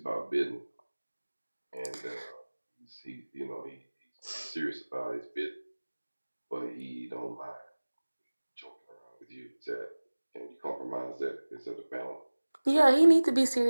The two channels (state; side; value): inverted; both; correlation -1.00